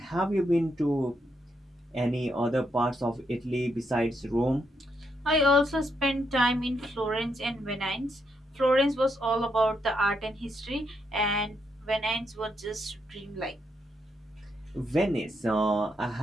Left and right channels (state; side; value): normal; both; correlation 0.78